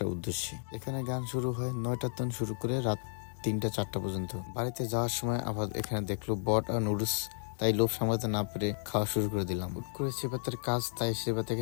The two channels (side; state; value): right; silent; digital silence